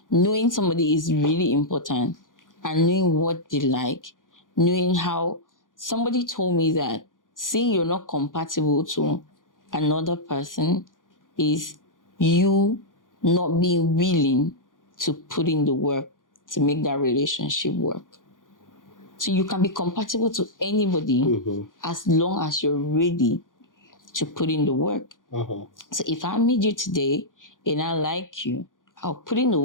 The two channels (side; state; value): right; late; 0.89 ms